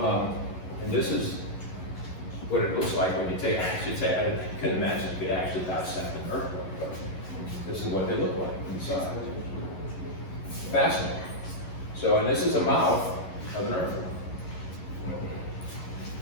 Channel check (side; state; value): right; late; 11 ms